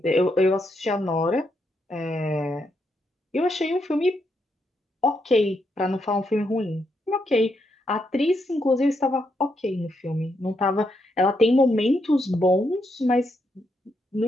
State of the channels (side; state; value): both; normal; correlation 0.80